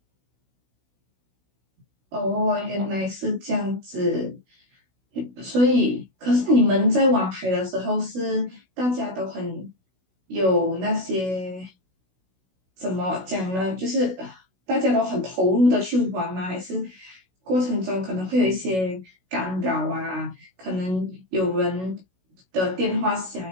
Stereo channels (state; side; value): late; left; 16 ms